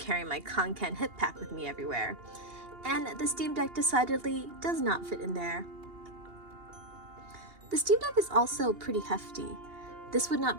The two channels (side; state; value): left; late; 2.8 ms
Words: my Conken hip pack with me everywhere, and the Steam Deck decidedly does not fit in there. The Steam Deck is also pretty hefty. This would not